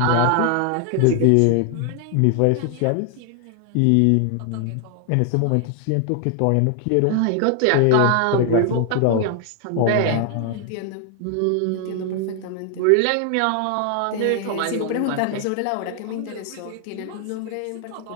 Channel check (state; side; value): different; both; correlation 0.00